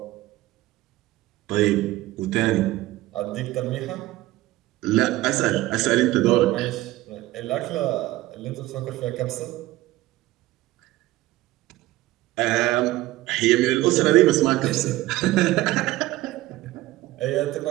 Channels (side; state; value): left; quieter; 17.3 dB